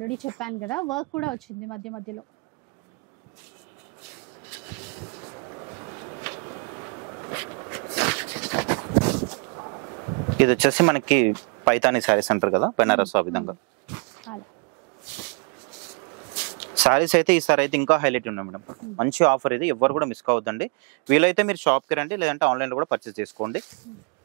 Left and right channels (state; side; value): quieter; left; 34.0 dB